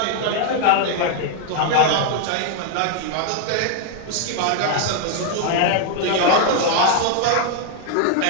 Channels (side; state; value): both; different; correlation 0.00